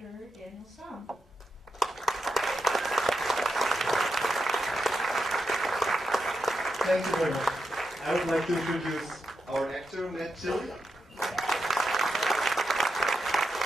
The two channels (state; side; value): normal; both; correlation 0.86